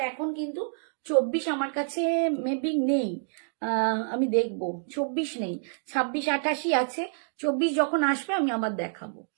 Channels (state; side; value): silent; left; digital silence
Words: এখন কিন্তু 24 আমার কাছে মেবি নেই, আমি দেখবো, 24 নেই, 26 28 আছে, 24 যখন আসবে আমি আবার দেখাবো।